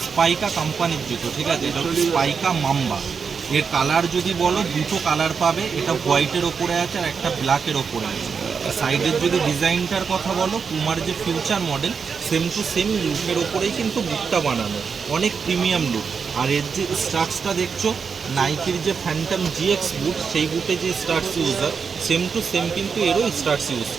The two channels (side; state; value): left; quieter; 5.9 dB